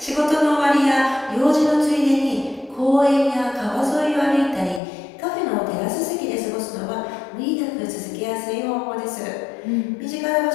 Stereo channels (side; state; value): right; drops out; at 4.8 s